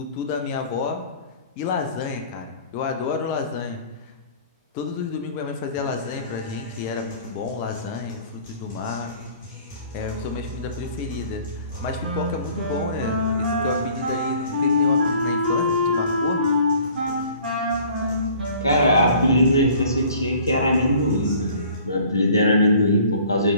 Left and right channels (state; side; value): inverted; both; correlation -0.51